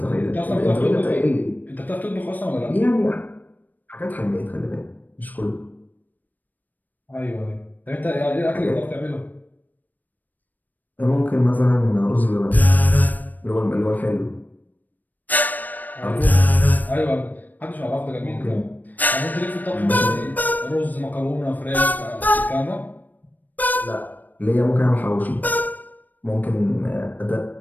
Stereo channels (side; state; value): right; late; 0.085 ms